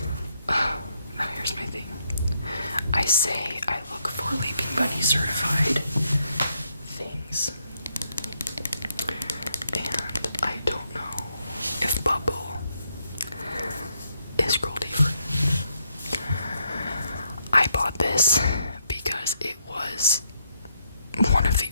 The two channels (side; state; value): both; inverted; correlation -0.76